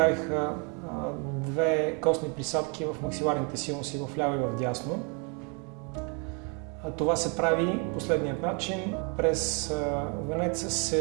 2 костни присадки в максиларните синуси в ляво и в дясно. Това се прави последният начин. През венеца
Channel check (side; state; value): left; quieter; 35.3 dB